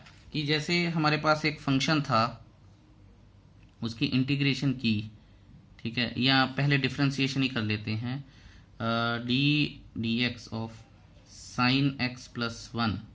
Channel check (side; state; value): both; identical; correlation 1.00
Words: कि जैसे हमारे पास एक फंक्शन था, उसकी इंटीग्रेशन की, ठीक है, या पहले डिफरेंशिएशन ही कर लेते हैं, D x of sine x plus 1।